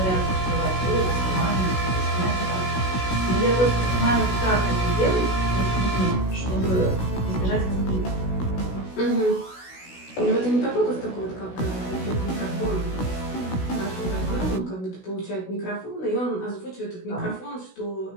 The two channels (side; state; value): right; late; 16 ms